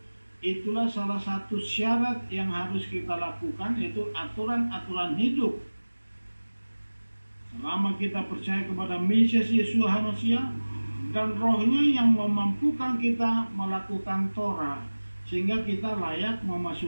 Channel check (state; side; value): inverted; both; correlation -1.00